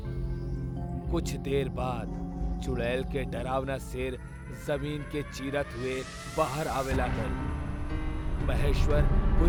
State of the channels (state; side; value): identical; both; correlation 1.00